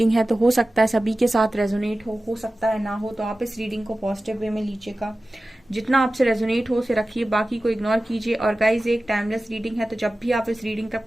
है तो हो सकता है सभी के साथ रेजोनेट हो सकता है ना हो, तो आप इस रीडिंग को पॉजिटिव वे में लीजिएगा। जितना आपसे रेजोनेट हो उसे रखिए, बाकी को इग्नोर कीजिए। और गाइज, एक टाइमलेस रीडिंग है तो जब भी आप इस रीडिंग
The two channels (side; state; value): both; normal; correlation 0.95